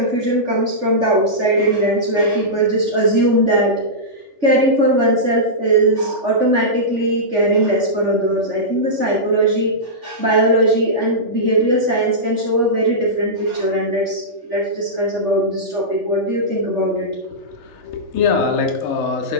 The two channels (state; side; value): late; left; 3.4 ms